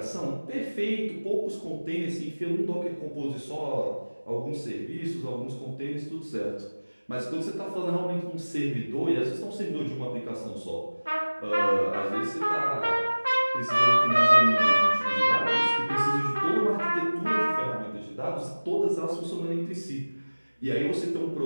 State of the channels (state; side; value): inverted; both; correlation -1.00